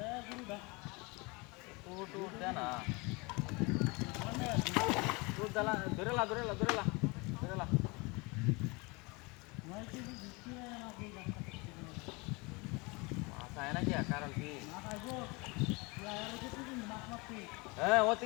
টুর টুর দে না টুর দালা ধরেলা ধরেলা ধরেলা ধরেলা মাছ আয় না কি কারণ কি হ্যাঁ হতে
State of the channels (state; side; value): quieter; right; 27.0 dB